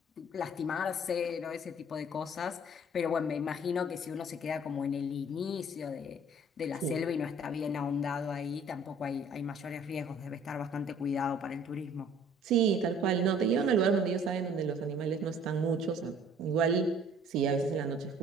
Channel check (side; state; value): both; normal; correlation 0.54